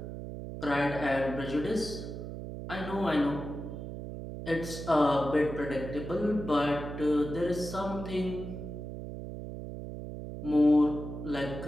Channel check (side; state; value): right; noise; hum, 8 dB below the sound